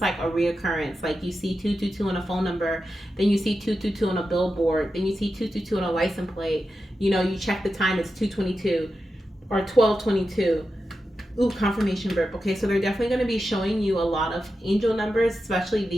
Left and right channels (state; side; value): normal; both; correlation 0.90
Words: like a reoccurrence. Like, you see 222 on a phone number, then you see 222 on a billboard, then you see 222 on a license plate. You know, you check the time, it's 222 or 1222. Ooh, confirmation burp. Okay, so they're definitely going to be showing you a lot of angel numbers, especially